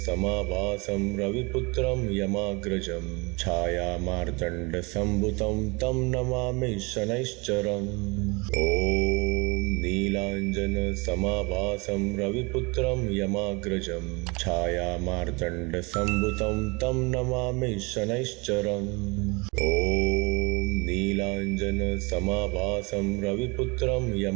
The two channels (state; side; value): quieter; left; 27.8 dB